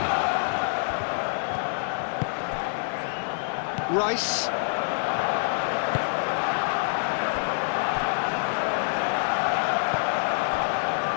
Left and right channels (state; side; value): silent; right; 61 dB below the other